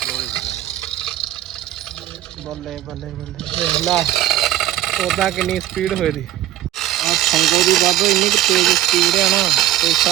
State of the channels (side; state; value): left; quieter; 13.3 dB